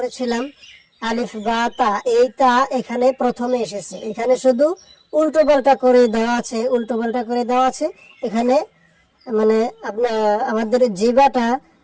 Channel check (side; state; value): both; identical; correlation 1.00